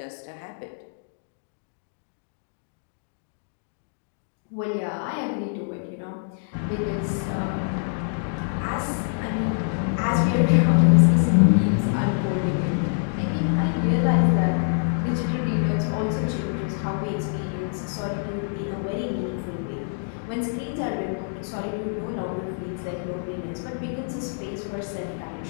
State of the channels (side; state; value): right; silent; digital silence